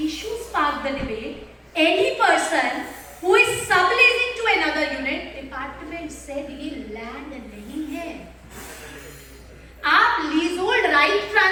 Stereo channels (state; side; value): identical; both; correlation 1.00